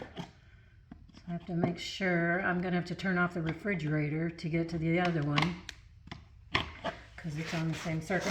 So I have to make sure. I'm going to have to turn off the refrigerator to get to the other one, because it's on the same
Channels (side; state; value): both; identical; correlation 1.00